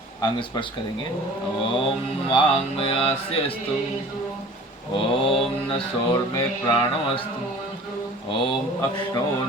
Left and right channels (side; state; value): both; normal; correlation 0.45